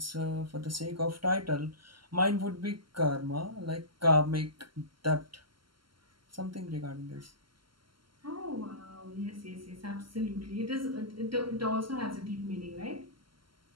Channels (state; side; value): late; left; 0.73 ms